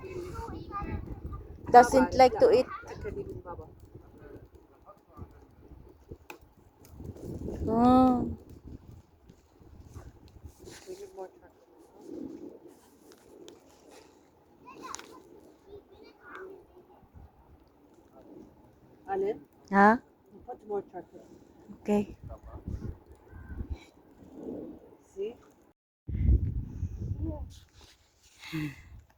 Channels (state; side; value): identical; both; correlation 1.00